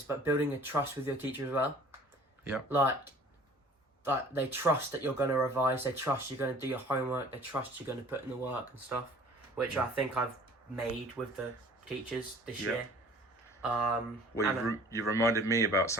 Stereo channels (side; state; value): both; normal; correlation 0.49